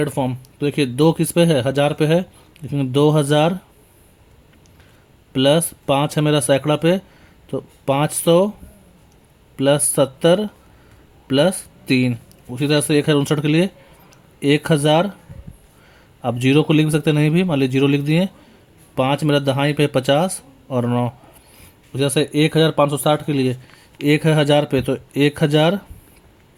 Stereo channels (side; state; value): both; identical; correlation 1.00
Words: फॉर्म। तो देखिए 2 किस पे है, 1000 पे है, लिखेंगे 2000 प्लस 5 है मेरा सैकड़ा पे, तो 500 प्लस 70 प्लस 3। उसी तरह से 1059 के लिए 1000, आप 0 को लिख भी सकते नहीं भी, मान लीजिए 0 लिख दिए। 5 मेरा दहाई पे 50 और 9। उसी तरह से 1560 के लिए 1 है 1000 पे, तो 1000